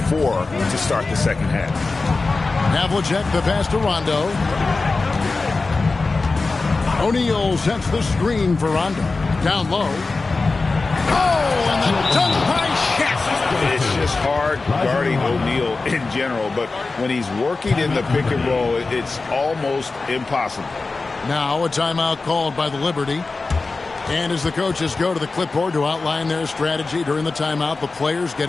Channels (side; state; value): right; quieter; 3.8 dB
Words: 4 to start the second half. Havlicek the pass to Rondo. O'Neal sets the screen for Rondo. Down low. Oh, and the dunk by Shaq. It's just hard guarding O'Neal in general, but when he's working in the pick and roll, it's almost impossible. Now a timeout called by the Liberty. And as the coaches go to the clipboard to outline their strategy during the timeout, the players